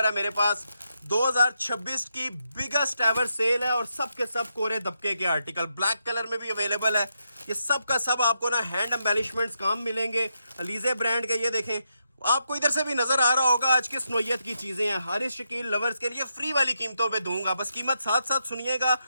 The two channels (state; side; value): inverted; both; correlation -0.83